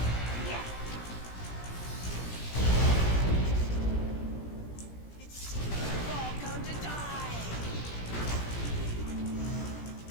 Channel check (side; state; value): right; late; 17 ms